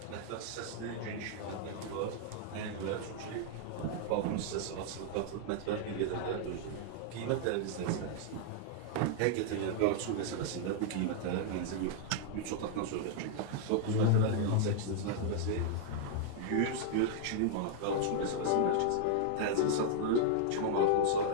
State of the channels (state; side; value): different; both; correlation -0.01